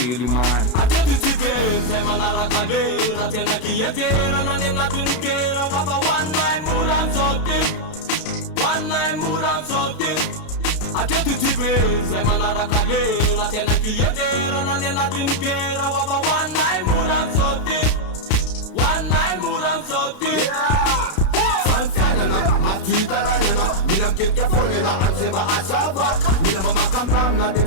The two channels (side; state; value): right; late; 32 ms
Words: io man Atety tibe zay manaraka lera Tena klientera na ny anatin'ny gera Wafa hoaninay mora amizao ty Hoaninay mora amizao ty Atety tibe zay manaraka lera Tena klientera na ny anatin'ny gera Wafa hoaninay mora amizao ty Hoaninay mora amizao ty Fanfianana, mafitarainana Mila miketika foana la amizay asava Mila mamaka amramina de